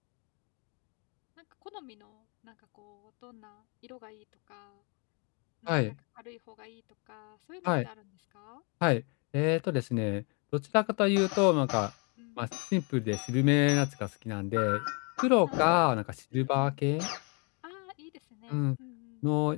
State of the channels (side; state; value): right; quieter; 34.8 dB